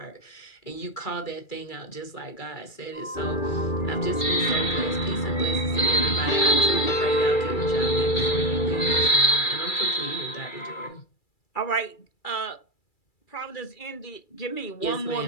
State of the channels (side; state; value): right; late; 2.3 ms